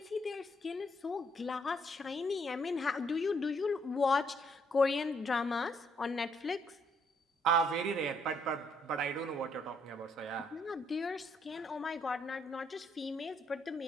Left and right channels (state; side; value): normal; both; correlation 0.70